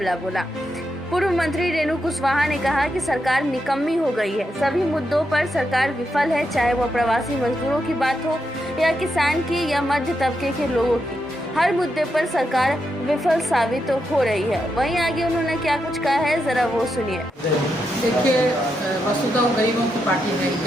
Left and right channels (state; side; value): normal; both; correlation 0.84